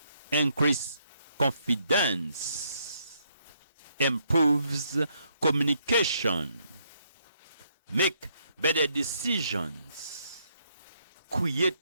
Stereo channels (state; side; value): inverted; both; correlation -0.73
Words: increase confidence, improves communication, make better decisions,